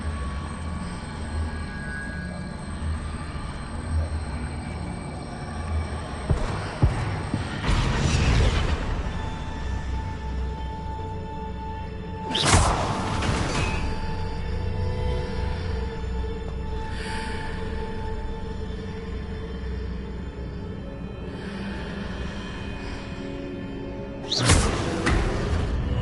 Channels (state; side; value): identical; both; correlation 1.00